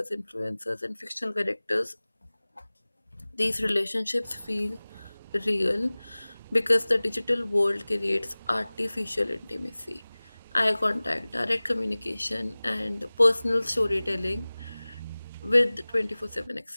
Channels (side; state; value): both; inverted; correlation -0.99